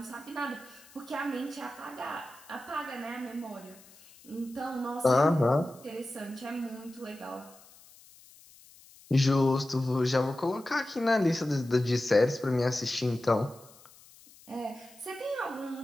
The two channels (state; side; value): noise; left; hiss, 24 dB below the sound